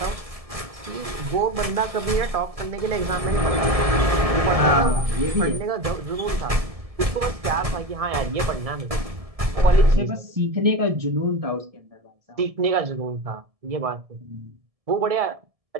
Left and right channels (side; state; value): left; late; 1.7 ms